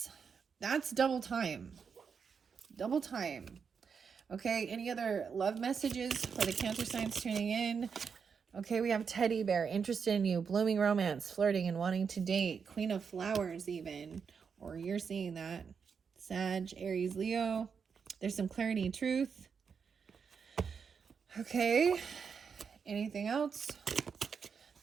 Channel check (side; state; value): left; quieter; 6.2 dB